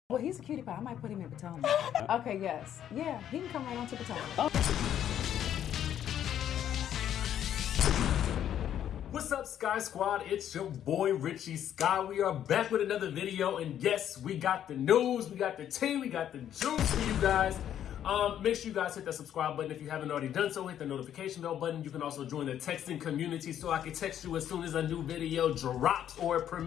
Well, he's a cutie pie. I might put him in Potomac. Okay, yes. Yeah, he can come right on to Potomac. What's up, Sky Squad? It's your boy, Richie Sky. We are back with another video, and yes, we got the news, we got the tea, we got the juice for you guys. Make sure you guys hit that subscribe button if you haven't already done so. Hit the notification bell button. You can also join the texting community so I can text you as soon as a new video drops or it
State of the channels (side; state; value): right; quieter; 10.3 dB